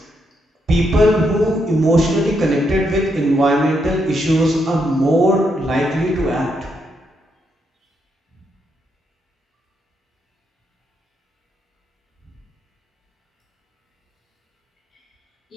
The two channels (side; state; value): both; normal; correlation 0.79